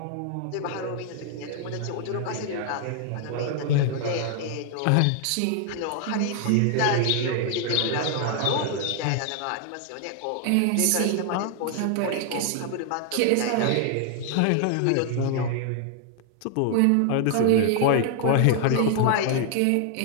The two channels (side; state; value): both; different; correlation 0.00